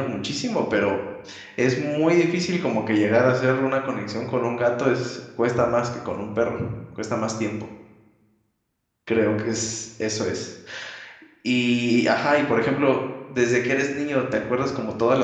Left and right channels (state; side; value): identical; both; correlation 1.00